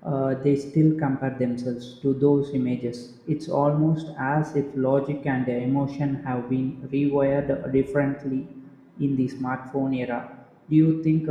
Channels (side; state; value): both; identical; correlation 1.00